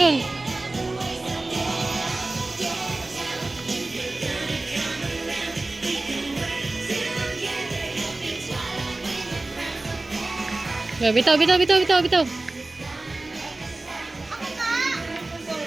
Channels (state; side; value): quieter; left; 3.0 dB